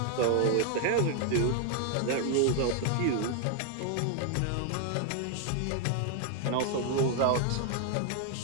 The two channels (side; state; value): both; different; correlation 0.00